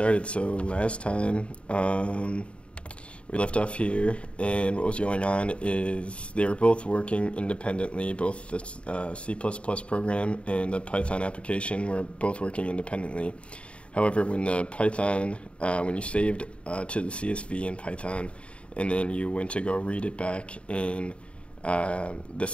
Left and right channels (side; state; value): right; late; 0.059 ms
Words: So last time we left off here, and what was going on is they were both working independently. Both the C++ program and the Python application were both working independently. However, when the Python, when you saved to the CSV in Python, and then you went to go read it back in the